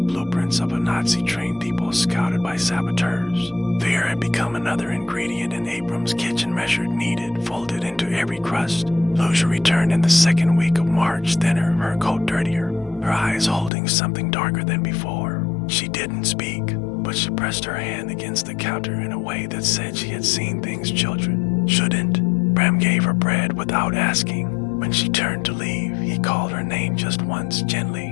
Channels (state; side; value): drops out; right; at 13.7 s